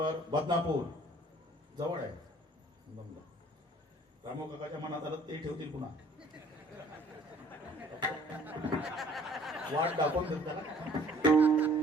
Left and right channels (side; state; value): both; normal; correlation 0.56